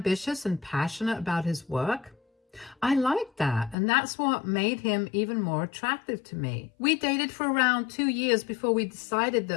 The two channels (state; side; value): drops out; right; at 3.8 s